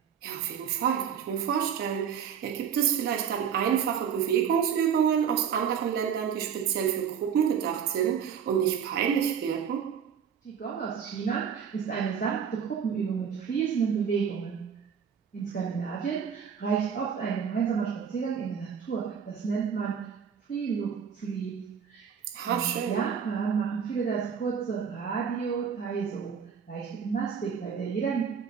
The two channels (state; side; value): quieter; left; 7.5 dB